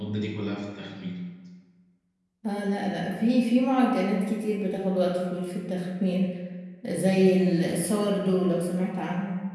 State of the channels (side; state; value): both; identical; correlation 1.00